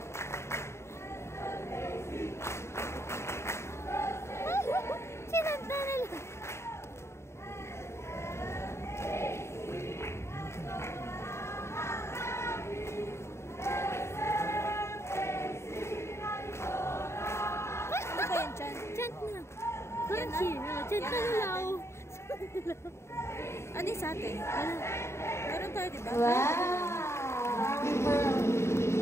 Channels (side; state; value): right; late; 0.13 ms